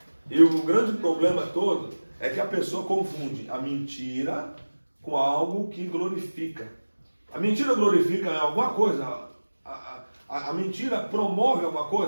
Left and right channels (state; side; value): inverted; both; correlation -1.00